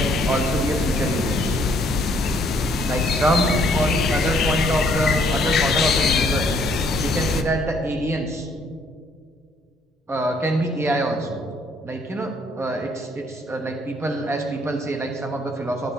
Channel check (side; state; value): both; normal; correlation 0.65